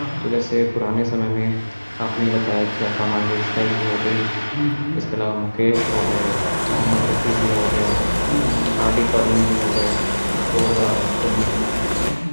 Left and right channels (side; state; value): both; inverted; correlation -1.00